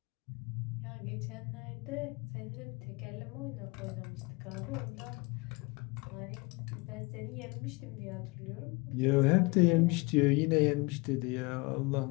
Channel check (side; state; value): right; quieter; 26.6 dB